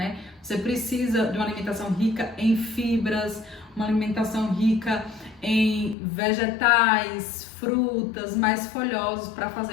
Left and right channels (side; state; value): right; drops out; at 6.0 s